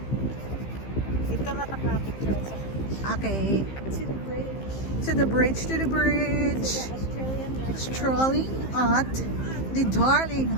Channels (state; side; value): late; right; 15 ms